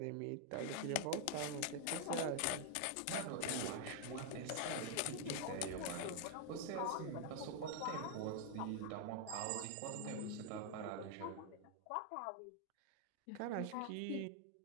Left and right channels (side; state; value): both; different; correlation 0.00